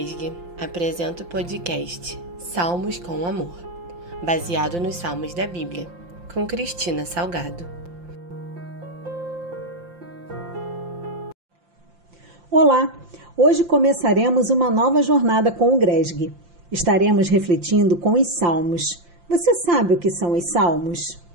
apresenta o podcast Salmos com Amor, baseado nos Salmos da Bíblia, com Cristina Salgado. Olá! Hoje começaremos uma nova jornada com o Gresg. Estaremos refletindo com os Salmos. Você sabe o que são os Salmos?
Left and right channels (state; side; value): late; left; 5.7 ms